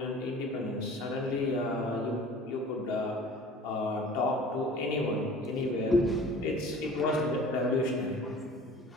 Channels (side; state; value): both; normal; correlation 0.45